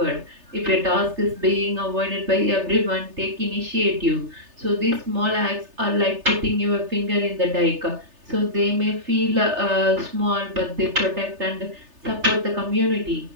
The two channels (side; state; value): left; late; 3.3 ms